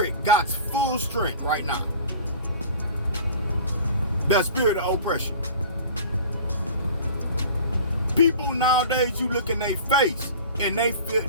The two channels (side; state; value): both; inverted; correlation -0.41